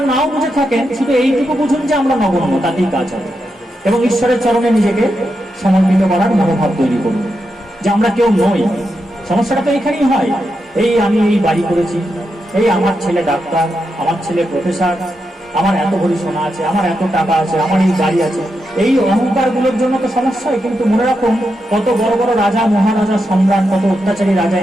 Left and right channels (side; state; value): both; normal; correlation 0.86